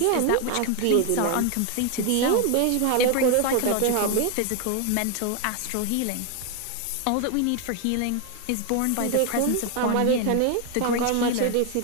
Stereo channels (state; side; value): different; both; correlation 0.01